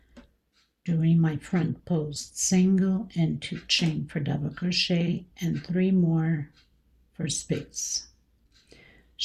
doing my front post single and 2 chain for double crochet and 3 more for space.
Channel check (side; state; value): both; identical; correlation 1.00